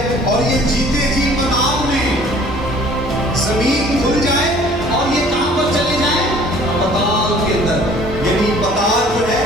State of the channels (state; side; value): normal; both; correlation 0.53